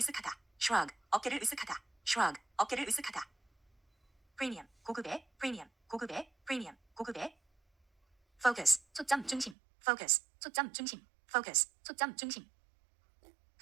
shrug, 어깨를 으쓱하다, shrug, 어깨를 으쓱하다. premium, 고급의, premium, 고급의, premium, 고급의. focus, 초점 중심, focus, 초점 중심, focus, 초점 중심.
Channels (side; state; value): left; drops out; at 9.6 s